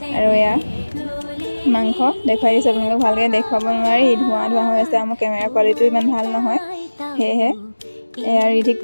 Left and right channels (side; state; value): both; inverted; correlation -1.00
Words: আৰু মাংস দেখুৱাই দিছোঁ আপোনালোকক, ভালকৈ দেখুৱাব নোৱাৰি, ধোঁৱা হৈ আছে। মোৰ কেমেৰা কোৱালিটিও ইমান ভাল নহয়, সেয়েহে ৰিধিক